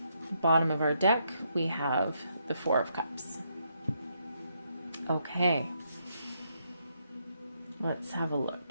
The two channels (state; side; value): inverted; both; correlation -0.77